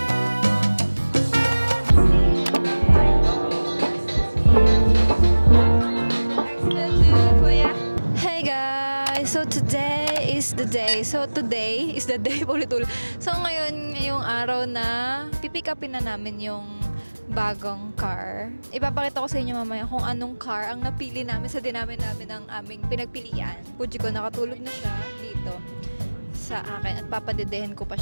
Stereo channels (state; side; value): inverted; both; correlation -1.00